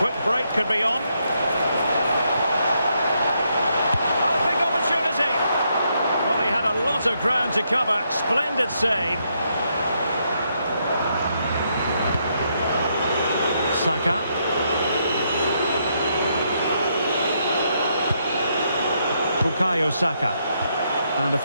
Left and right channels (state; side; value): inverted; both; correlation -0.77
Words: break could be on. Oh, big opportunity. Well, he had a lot of ground to cover. Splendid save. Saka. Bukayo Saka. And a